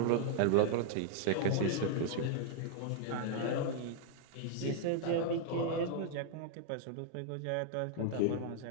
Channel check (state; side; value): different; both; correlation -0.01